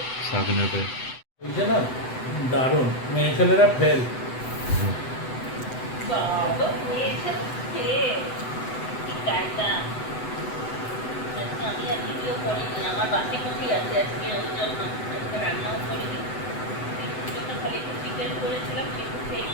শাক নেবে। ওইটা না দারুণ, মেয়ে ছেলেরা ফেল। বাবা খেয়েছে খেয়ে কি কায়দা। আজকে আমি আর ভিডিও করিনি, আমার বাসি কুচি আছে আজকে, ওই জন্য আজকে রান্নাও করিনি। চিকুর জন্য খালি একটু চিকেন করেছিলাম, চিকু খেয়ে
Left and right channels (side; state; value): right; late; 7.9 ms